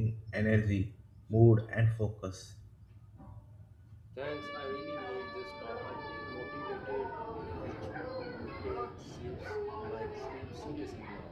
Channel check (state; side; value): identical; both; correlation 1.00